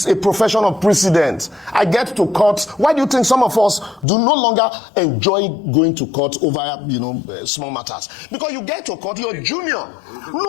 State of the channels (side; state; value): right; drops out; at 4.0 s